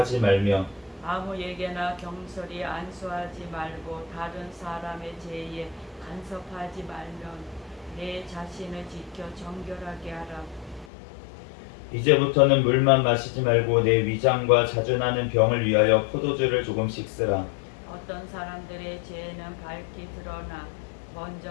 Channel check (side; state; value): right; drops out; at 10.9 s